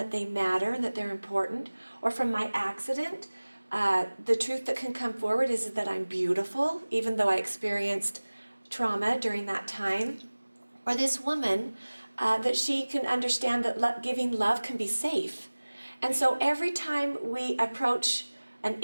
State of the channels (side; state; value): both; inverted; correlation -1.00